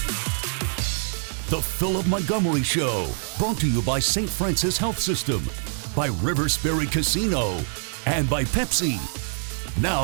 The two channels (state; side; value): silent; left; digital silence